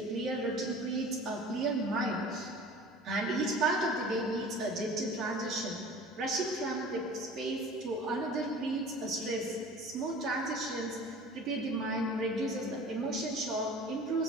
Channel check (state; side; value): normal; both; correlation 0.42